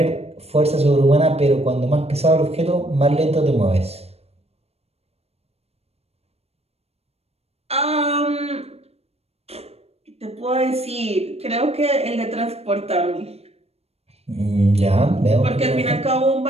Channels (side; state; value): left; late; 0.30 ms